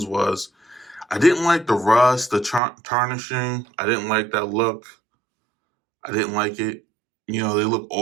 was I didn't like the rust, the tarnishing. I didn't like that look. I didn't like it. You know, they look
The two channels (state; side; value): drops out; left; at 2.6 s